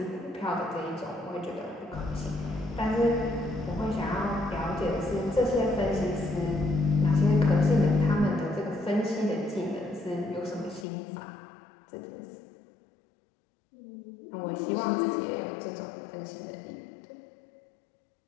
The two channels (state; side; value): drops out; right; at 10.9 s